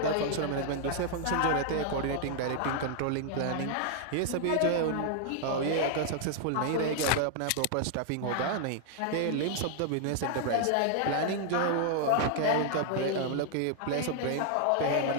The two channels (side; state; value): both; different; correlation 0.00